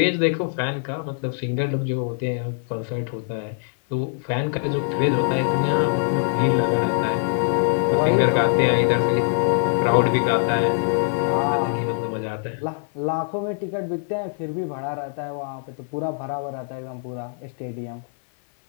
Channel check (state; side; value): silent; right; 56 dB below the other